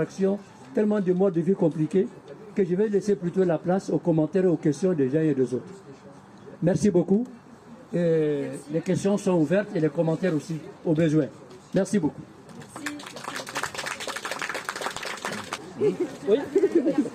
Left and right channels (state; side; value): identical; both; correlation 1.00